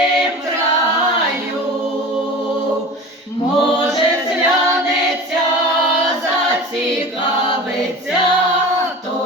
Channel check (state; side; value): normal; both; correlation 0.35